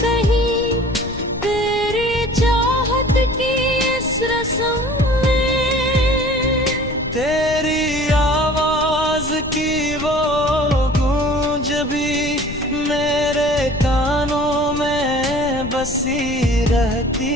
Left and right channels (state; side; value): noise; left; rumble, 11 dB below the sound